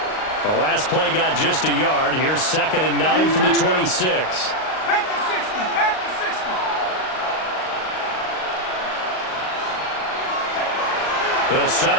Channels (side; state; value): right; late; 38 ms